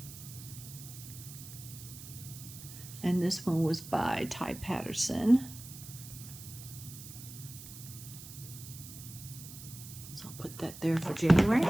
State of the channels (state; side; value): noise; right; hiss, 14 dB below the sound